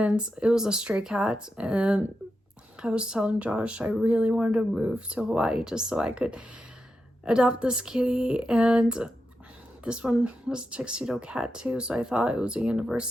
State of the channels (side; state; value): both; normal; correlation 0.88